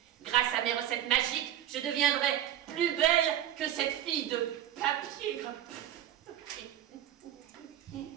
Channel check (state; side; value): quieter; left; 11.2 dB